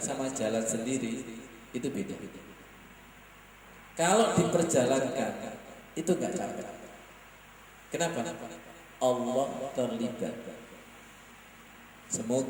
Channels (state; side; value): identical; both; correlation 1.00